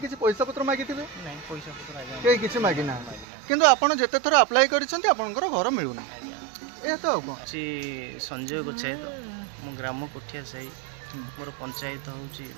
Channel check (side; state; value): left; drops out; at 3.2 s